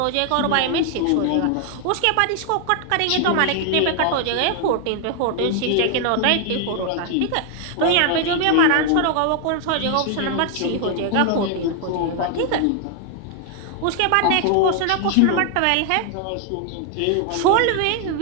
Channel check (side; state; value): both; different; correlation 0.00